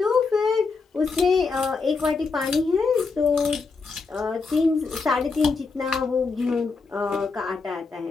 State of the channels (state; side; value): quieter; right; 4.4 dB